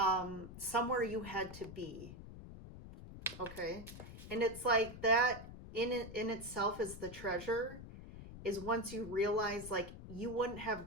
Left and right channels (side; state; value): left; noise; rumble, 13 dB below the sound